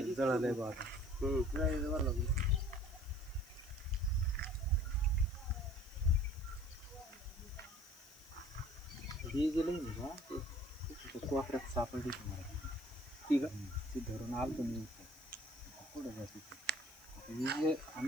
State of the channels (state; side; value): noise; left; hiss, 22 dB below the sound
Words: जळालंय बा आता. ही जी लाईन आहे का ते कोपऱ्यात सापडली तुम्हाला ठीक आहे. ती धरून आलं तुम्ही पुढे जाते. ही जे